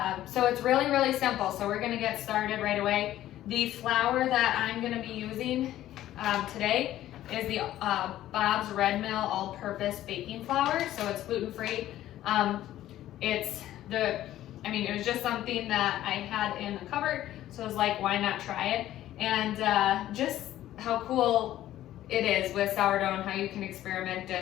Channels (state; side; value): quieter; right; 13.5 dB